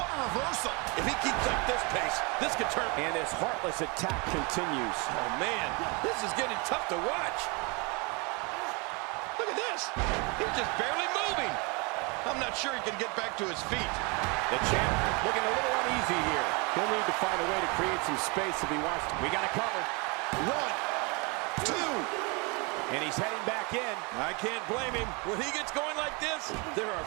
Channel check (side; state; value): left; quieter; 30.0 dB